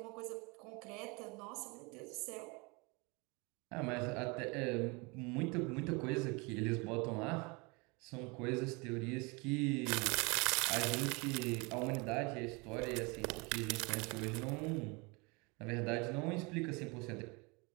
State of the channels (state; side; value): quieter; left; 28.4 dB